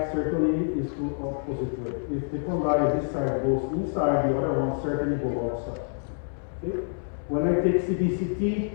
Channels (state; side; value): silent; right; 60 dB below the other